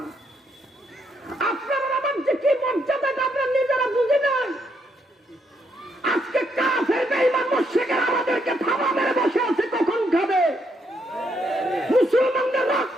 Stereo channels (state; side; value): normal; both; correlation 0.75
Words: আপনার আমার যে কি মর্যাদা আমরা নিজেরা বুঝি না। আজকে কাফের বেঈমান মুশরিকরা আমাদেরকে থাবা মেরে বসে আছে, কখন খাবে? মুসলমানদের